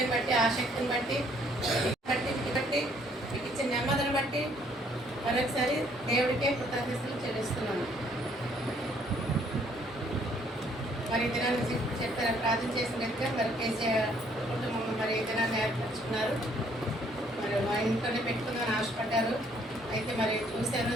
బట్టి, ఆసక్తిని బట్టి మీకు ఇచ్చిన నెమ్మదిని బట్టి మరొకసారి దేవుడికే కృతజ్ఞతలు చెల్లిస్తున్నాము. మరి ఈ దినాన్ని చెప్పారు, ప్రార్థన చేసినట్టుగా మరి కేసీఆర్ కుటుంబం మరి ఈ దినాన్ని ఏర్పరచుకున్నారు. మరి మా ఇంట్లోనే పెట్టుకుందామని ఆశపడ్డారు. అయితే మరి చూశాను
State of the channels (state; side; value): normal; both; correlation 0.65